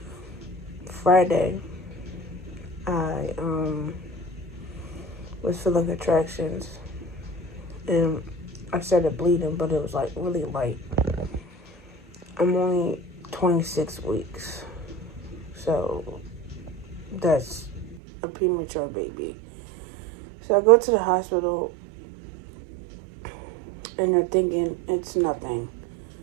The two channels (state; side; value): drops out; left; at 18.0 s